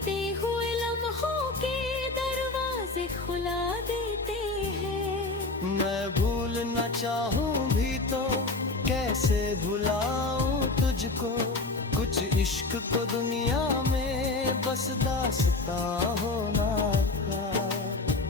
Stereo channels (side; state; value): right; quieter; 3.3 dB